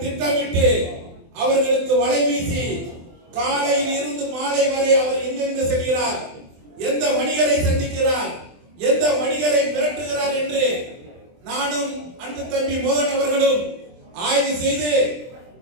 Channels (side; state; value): left; late; 23 ms